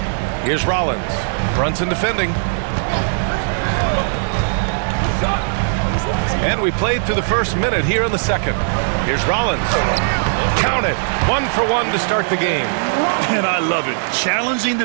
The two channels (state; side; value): silent; left; digital silence